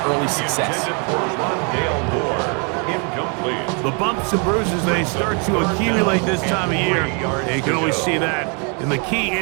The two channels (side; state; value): left; quieter; 36.2 dB